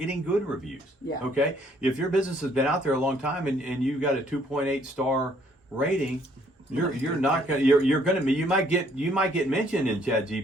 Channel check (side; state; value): both; normal; correlation 0.64